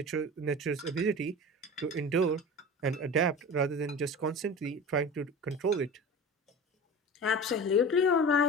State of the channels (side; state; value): both; normal; correlation 0.33